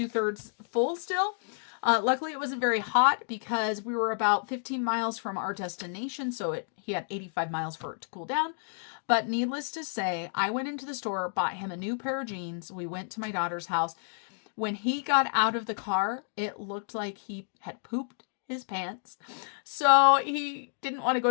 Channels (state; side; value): silent; right; digital silence